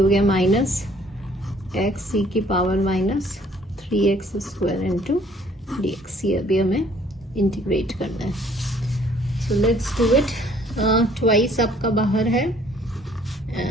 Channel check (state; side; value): normal; both; correlation 0.60